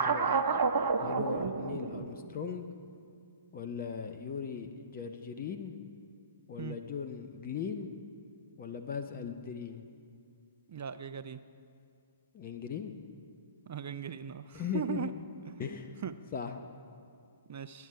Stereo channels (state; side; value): inverted; both; correlation -0.33